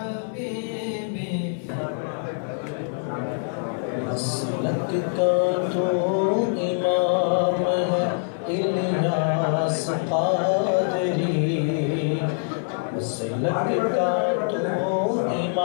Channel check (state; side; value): silent; right; digital silence